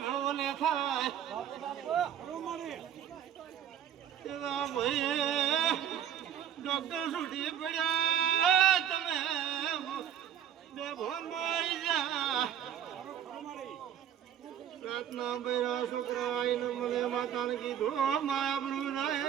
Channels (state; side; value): quieter; left; 9.7 dB